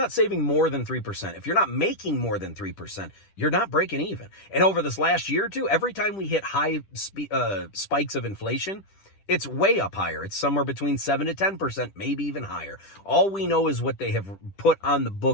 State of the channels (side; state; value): right; late; 10 ms